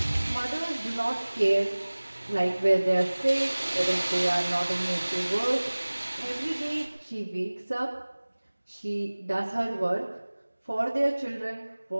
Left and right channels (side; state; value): both; inverted; correlation -1.00